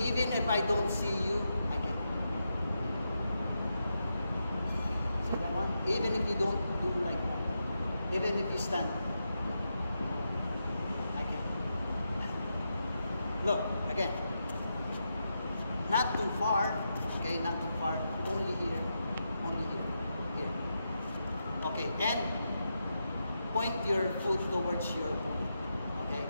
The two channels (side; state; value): both; inverted; correlation -0.86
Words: if I don't see you, I can. See that one? Even if you don't do like that. Even if you stand. I can. Look, again. Not too far. Okay, not too far. Only here. Only here. Here. Okay, and point your foot towards your opponent. Okay?